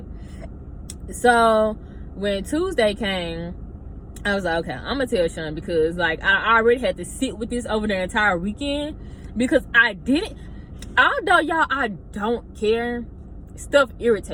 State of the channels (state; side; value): identical; both; correlation 1.00